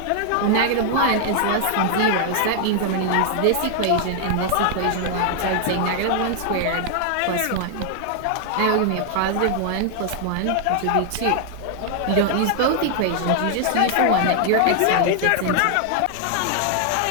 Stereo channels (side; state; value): both; different; correlation 0.00